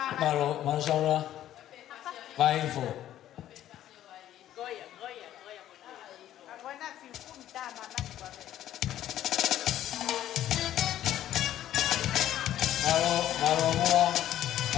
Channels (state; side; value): quieter; right; 12.3 dB